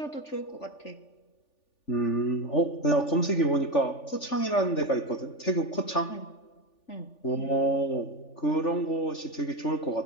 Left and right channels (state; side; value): late; right; 3.4 ms